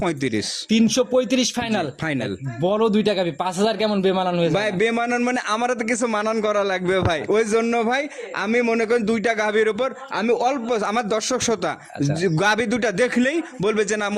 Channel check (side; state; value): both; identical; correlation 1.00